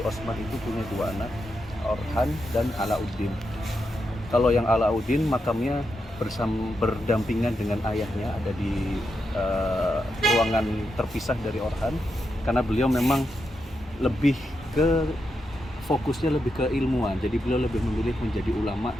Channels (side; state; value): both; normal; correlation 0.85